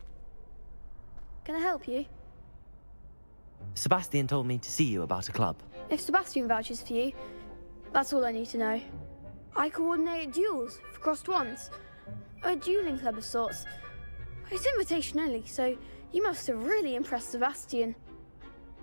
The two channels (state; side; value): inverted; both; correlation -1.00